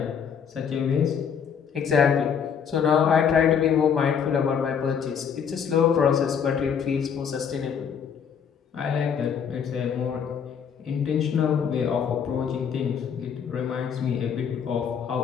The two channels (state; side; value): quieter; right; 7.3 dB